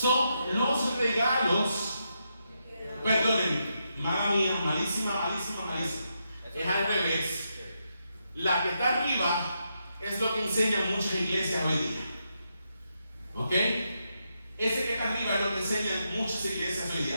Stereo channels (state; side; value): inverted; both; correlation -0.83